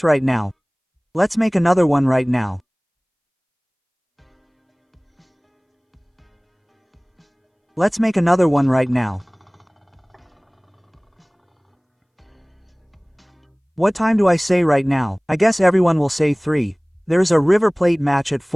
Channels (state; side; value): identical; both; correlation 1.00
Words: right now. Let's make another one right now. Let's make another one right now. What time do I say right now? I guess everyone will say 3. There's a river plate match at